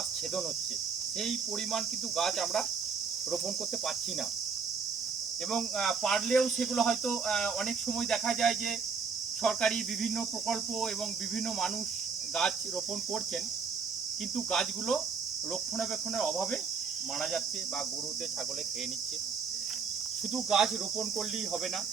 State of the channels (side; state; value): left; quieter; 5.6 dB